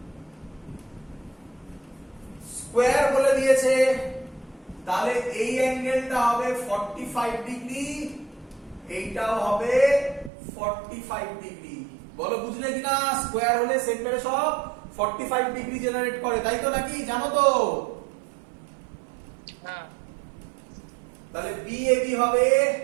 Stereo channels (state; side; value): drops out; left; at 10.3 s